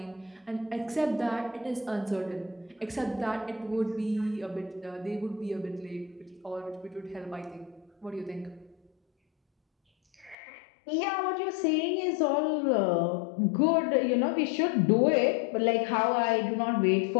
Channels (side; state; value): right; drops out; at 10.4 s